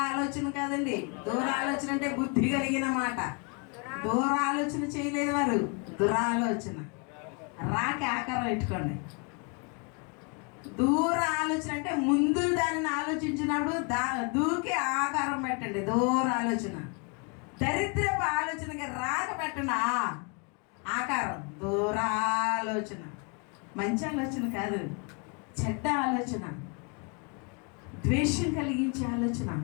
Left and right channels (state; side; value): quieter; right; 34.8 dB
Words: ఆలోచన కాదండి. దూర ఆలోచన అంటే బుద్ధి కలిగిన మాట. దూర ఆలోచన చేయలేదు వారు, దురాలోచన. రాకి ఆకారం పెట్టుకోండి. దూర ఆలోచన అంటే ముందు దానిని ఆలోచించినప్పుడు దూకి ఆకారం పెట్టండి. దూర ఆలోచన. దరిద్రపు ఆలోచనకి రాక పెట్టండి ఆకారం. దూరాలోచన మంచి ఆలోచన కాదు, చెడ్డ ఆలోచన, ద్వేషం కలిగించే ఆలోచన,